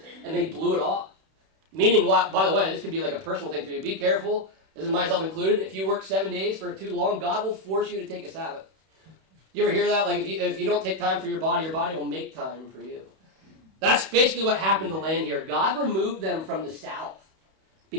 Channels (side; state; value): left; late; 31 ms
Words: and they blew it off. Meaning, by the way, this could be like a personal thing for you. Be careful, this is myself included. If you work 7 days for too long, God will force you to take a Sabbath. You ever hear that? Like if you don't take time for your body will make time for you. That's basically what happened to the land here. God removed them from the south